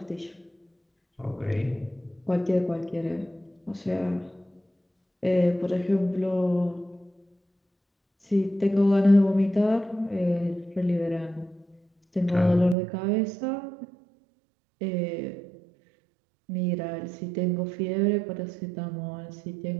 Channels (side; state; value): left; drops out; at 12.8 s